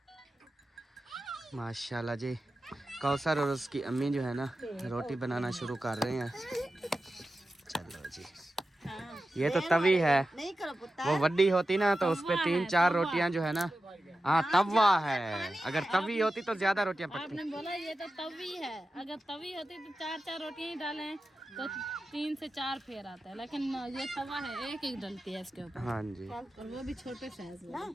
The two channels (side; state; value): both; normal; correlation 0.92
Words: माशाल्लाह जी, कौसर और उसकी अम्मी जो है ना रोटी बनाना शुरू कर रहे हैं। चलो जी, ये तो तवी है, वो वड्डी होती ना तो उस पे 3-4 रोटियां जो है ना, हाँ तवा है, अगर तवी होती तो ज्यादा रोटियां पकती। आपने बोला ये तो तवी है, अगर तवी होती तो 4-4 रोटियां ही डालें तो 3 से 4 फेर आता है, लेकिन ये तवा है, एक एक डलती है इसके ऊपर। हाँ जी, और वो भी छोटे साइज में।